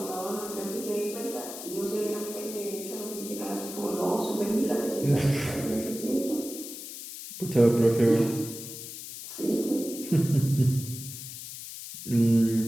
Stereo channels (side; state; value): left; noise; hiss, 10 dB below the sound